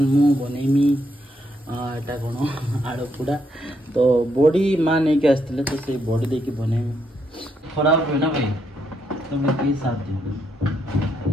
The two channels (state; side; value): normal; both; correlation 0.76